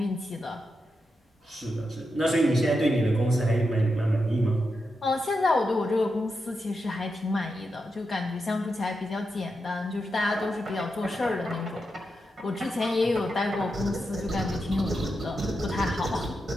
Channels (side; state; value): both; normal; correlation 0.87